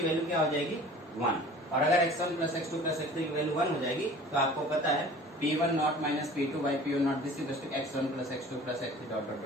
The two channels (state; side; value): normal; both; correlation 0.45